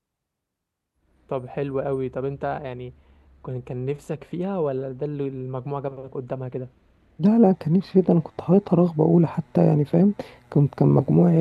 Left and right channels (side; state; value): both; identical; correlation 1.00